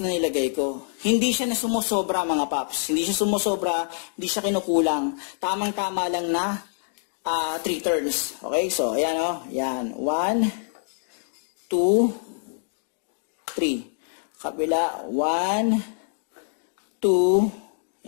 na nilagay ko. Hindi siya na sumusobra mga paps. Hindi siya sumusobra, hindi siya kinukulang. Tamang-tama lang na 3 turns. Okay, so ayan o. Yan. 1, 2, 3. Kabila. 1,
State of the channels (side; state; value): right; silent; digital silence